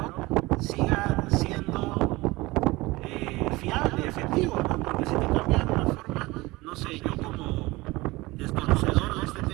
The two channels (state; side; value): quieter; left; 21.2 dB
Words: siga siendo fiable, efectivo, ¿no? Porque si te cambian de una forma, no sé, yo como desconocedor de este